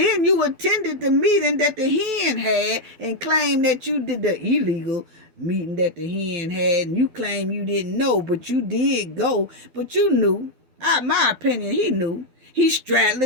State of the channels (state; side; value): late; left; 12 ms